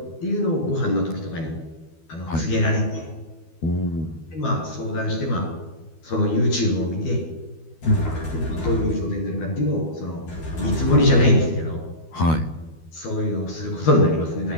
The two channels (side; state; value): right; late; 12 ms